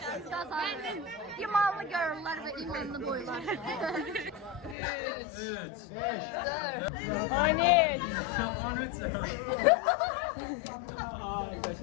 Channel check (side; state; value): right; drops out; at 4.8 s